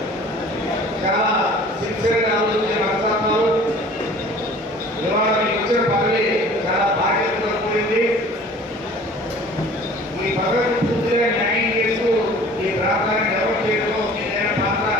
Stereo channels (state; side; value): normal; both; correlation 0.47